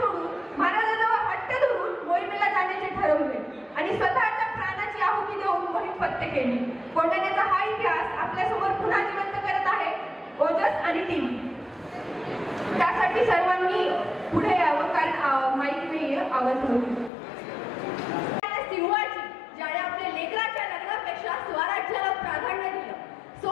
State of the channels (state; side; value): drops out; right; at 17.1 s